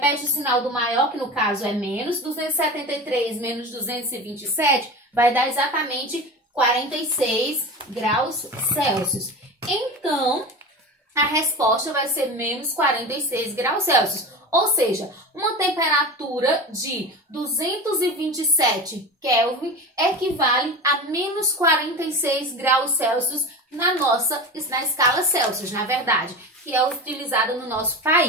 o sinal do maior, que no caso é menos. 273 menos 227 vai dar exatamente 46 graus Celsius. Então, a resposta vai ser menos 46 graus Celsius. Ou seja, uma temperatura de 227 Kelvin equivale a menos 46 graus Celsius na escala Celsius, na verdade, que é utilizada no nosso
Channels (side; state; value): both; normal; correlation 0.29